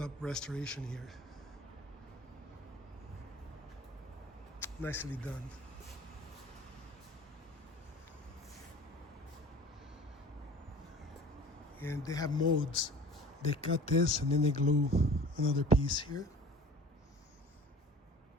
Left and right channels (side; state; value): both; normal; correlation 0.44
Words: restoration here. Nicely done. And they have modes. They cut this and then they glue another piece here.